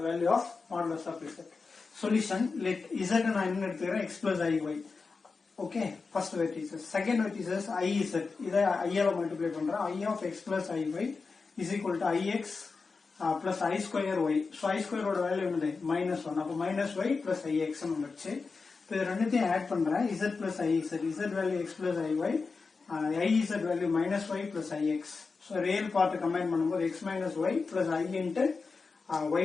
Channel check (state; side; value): quieter; right; 4.5 dB